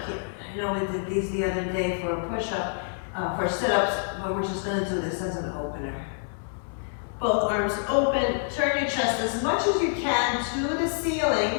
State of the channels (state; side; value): silent; right; digital silence